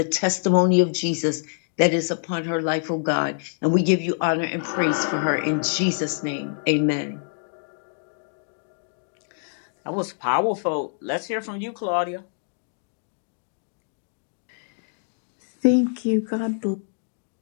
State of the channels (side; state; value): right; silent; digital silence